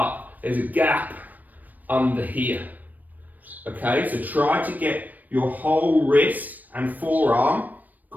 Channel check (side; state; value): left; late; 0.084 ms